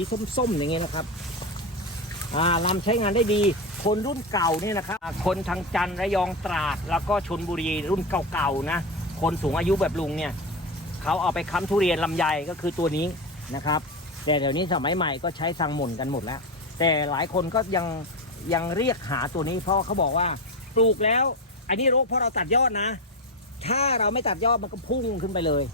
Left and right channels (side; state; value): both; normal; correlation 0.15